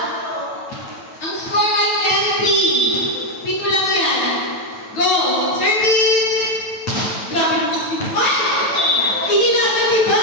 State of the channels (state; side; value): late; right; 9.1 ms